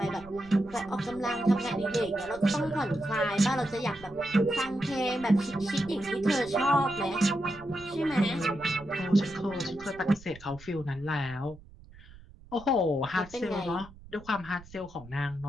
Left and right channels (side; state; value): right; noise; rumble, 20 dB below the sound